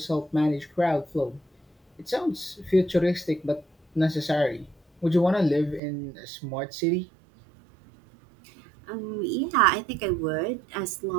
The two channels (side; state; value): left; drops out; at 5.8 s